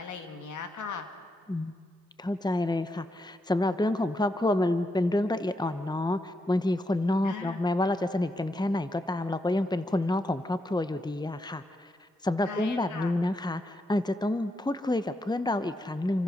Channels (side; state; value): both; normal; correlation 0.82